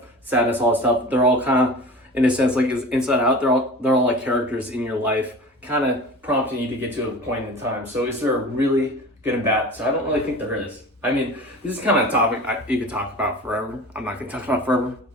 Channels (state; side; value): normal; both; correlation 0.37